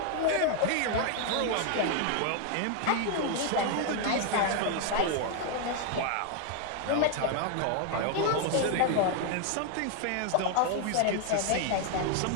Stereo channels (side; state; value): both; different; correlation 0.01